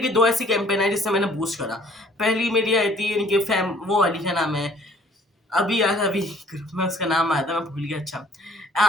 की 2 ऐसी कैंपेन आई जिससे मैंने बूस्ट करा। पहली मेरी आई थी इनके फैम, वो वाली क्या नाम है, अभी यार अभी ग्रुप में उसका नाम आया था मैं भूल गया। अच्छा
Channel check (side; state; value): both; normal; correlation 0.56